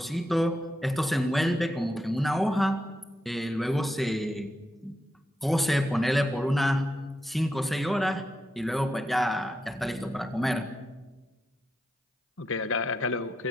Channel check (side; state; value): both; normal; correlation 0.85